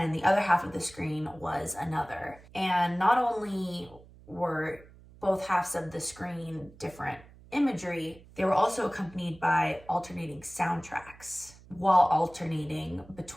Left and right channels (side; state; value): right; noise; hum, 22 dB below the sound